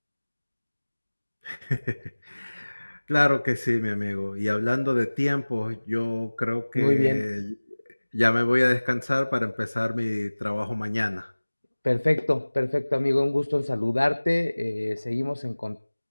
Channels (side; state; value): both; inverted; correlation -1.00